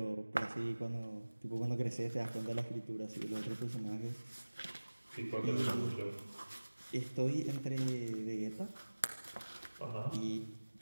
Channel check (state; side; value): inverted; both; correlation -1.00